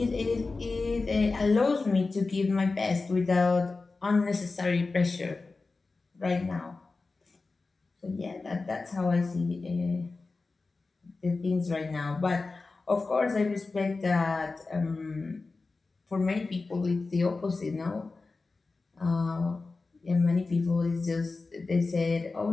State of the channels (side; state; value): right; quieter; 3.8 dB